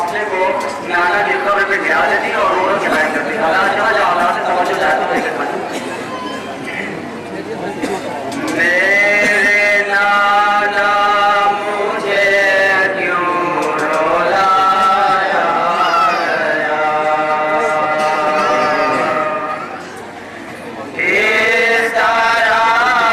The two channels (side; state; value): both; identical; correlation 1.00